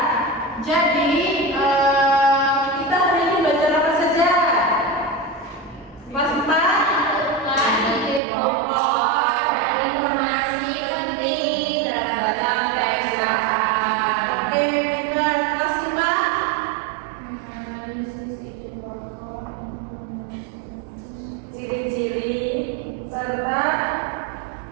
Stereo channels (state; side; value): drops out; left; at 8.2 s